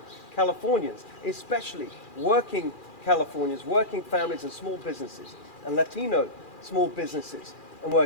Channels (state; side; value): late; right; 2.4 ms